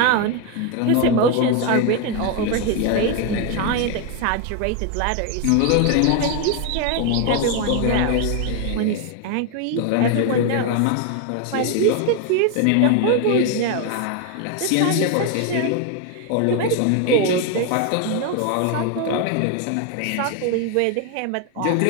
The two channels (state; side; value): different; both; correlation 0.01